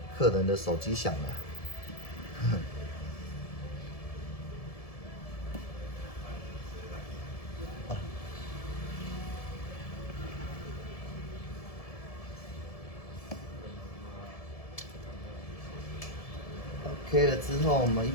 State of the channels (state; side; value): late; right; 1.7 ms